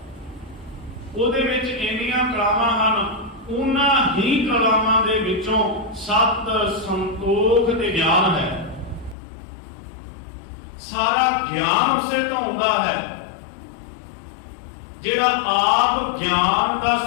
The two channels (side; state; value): right; drops out; at 9.2 s